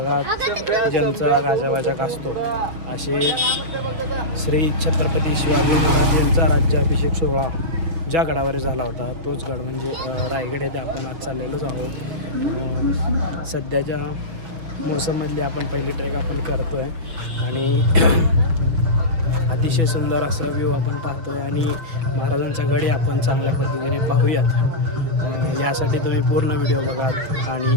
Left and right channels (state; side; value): late; left; 6.0 ms